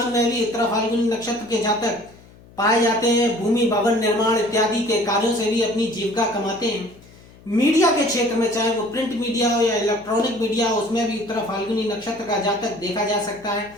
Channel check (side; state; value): left; noise; hum, 24 dB below the sound